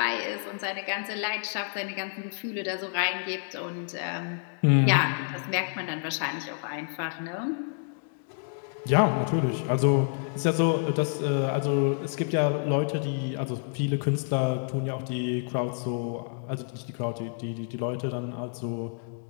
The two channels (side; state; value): right; silent; 59 dB below the other